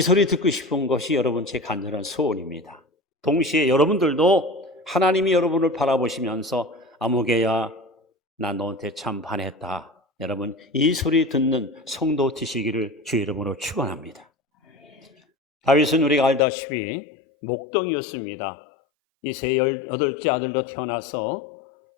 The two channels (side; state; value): right; drops out; at 16.4 s